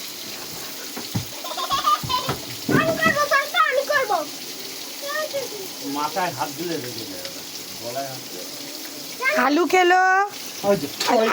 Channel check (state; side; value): identical; both; correlation 1.00